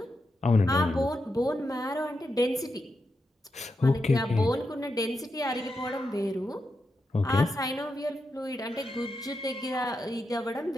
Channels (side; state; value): both; normal; correlation 0.86